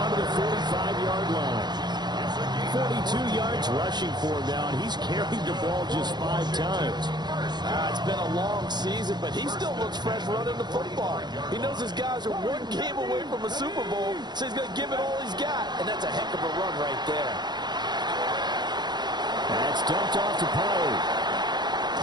to the 45-yard line. 42 yards rushing for him now, and he's carried the ball just 5 times. It's been a long season, but he still looks fresh running the football. He knows his guys are 1 game away from a Super Bowl, so he's going to give it all he's got, and that's a heck of a run right there. That's dumped off to Pollard.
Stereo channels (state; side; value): late; left; 0.21 ms